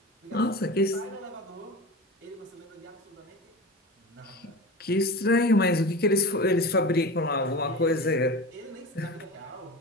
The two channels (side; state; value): both; normal; correlation 0.30